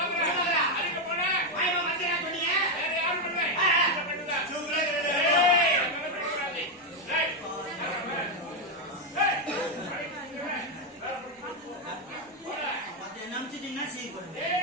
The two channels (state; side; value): normal; both; correlation 0.04